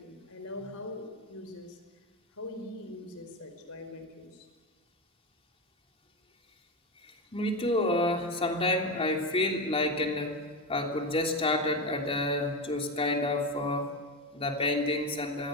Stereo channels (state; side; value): normal; both; correlation 0.16